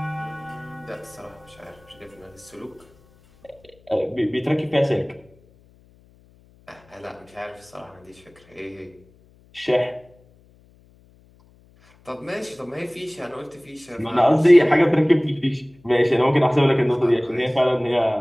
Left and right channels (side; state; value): left; noise; hum, 29 dB below the sound